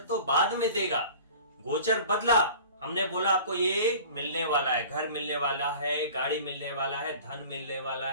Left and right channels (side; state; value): both; inverted; correlation -0.42